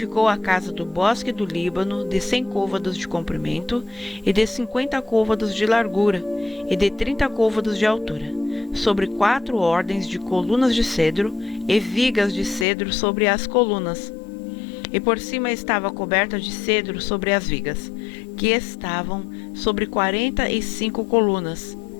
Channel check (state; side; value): drops out; right; at 12.7 s